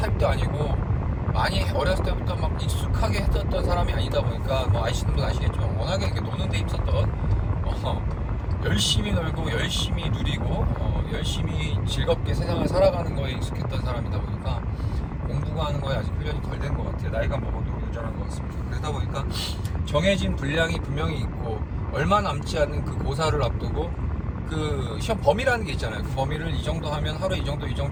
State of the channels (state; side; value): identical; both; correlation 1.00